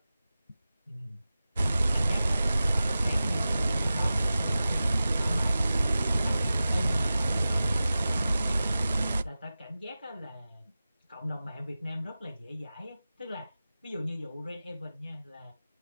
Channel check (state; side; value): inverted; both; correlation -0.95